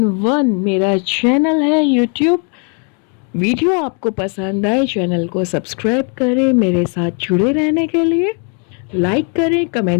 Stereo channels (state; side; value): quieter; right; 39.2 dB